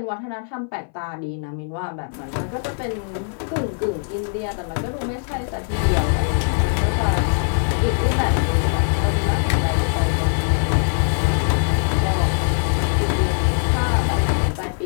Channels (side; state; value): right; silent; 60 dB below the other